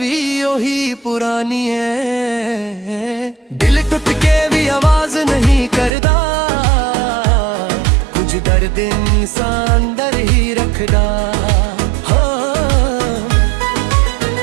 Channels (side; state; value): left; drops out; at 5.9 s